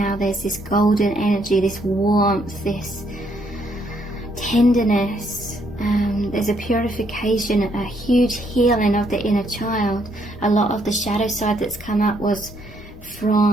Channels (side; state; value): left; noise; rumble, 20 dB below the sound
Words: there's this golden energy, this warmth, this tenderness. There's a purification, a huge healing of the inner child. A lot of the shadow side that's come up was